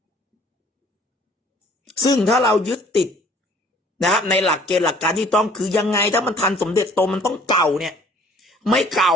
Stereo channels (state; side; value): normal; both; correlation 0.55